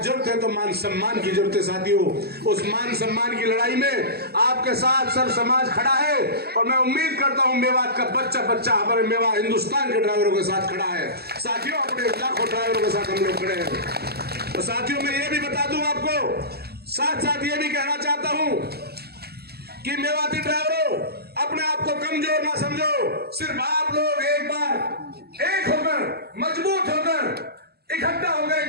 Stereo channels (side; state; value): left; late; 0.46 ms